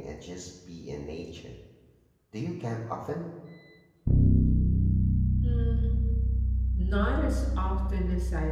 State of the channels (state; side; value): identical; both; correlation 1.00